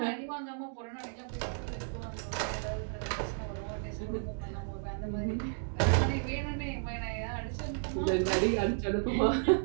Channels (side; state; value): left; silent; 56 dB below the other